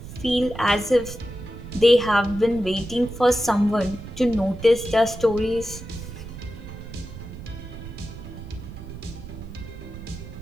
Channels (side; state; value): right; noise; rumble, 12 dB below the sound